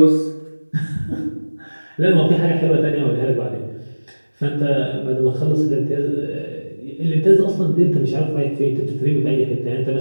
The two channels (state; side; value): inverted; both; correlation -1.00